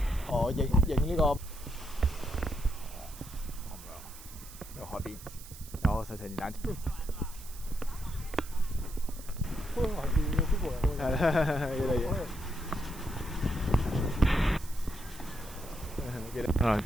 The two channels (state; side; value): noise; right; hiss, 16 dB below the sound